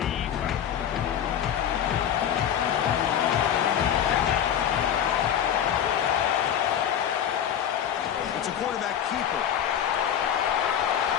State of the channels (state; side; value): quieter; right; 9.5 dB